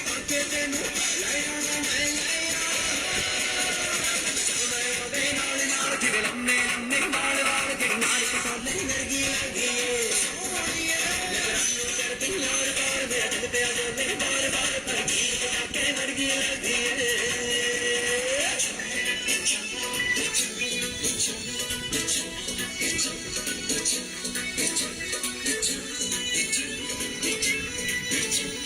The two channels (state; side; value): identical; both; correlation 1.00